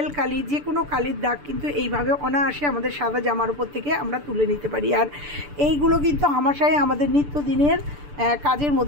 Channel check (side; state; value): left; late; 6.8 ms